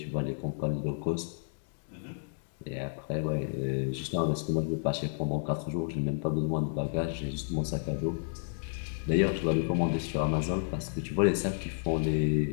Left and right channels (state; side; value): silent; right; digital silence